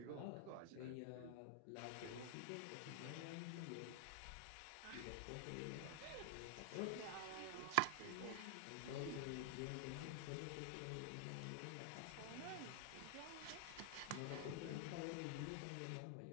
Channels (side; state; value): both; different; correlation 0.00